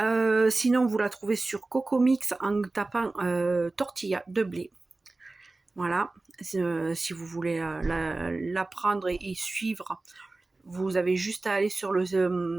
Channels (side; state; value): left; quieter; 3.2 dB